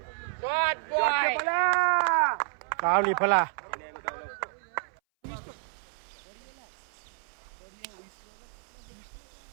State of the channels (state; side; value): silent; left; 58 dB below the other